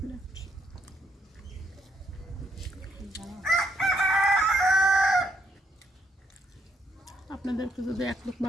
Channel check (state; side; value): normal; both; correlation 0.74